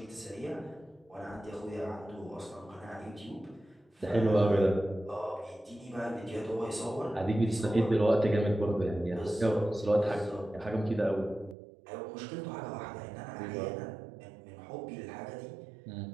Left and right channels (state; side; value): drops out; left; at 11.6 s